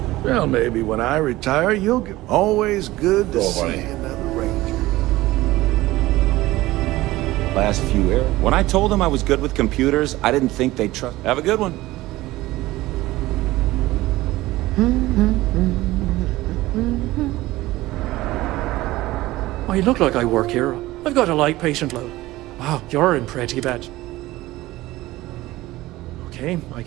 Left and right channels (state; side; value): quieter; left; 17.8 dB